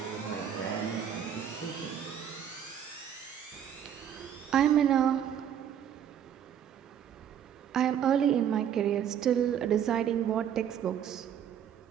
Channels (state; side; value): quieter; left; 9.2 dB